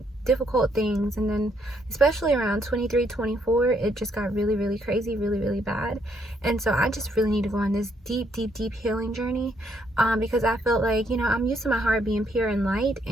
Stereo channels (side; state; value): both; normal; correlation 0.72